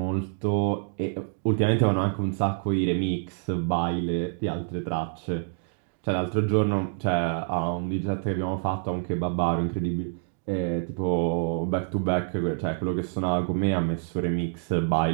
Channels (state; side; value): silent; left; digital silence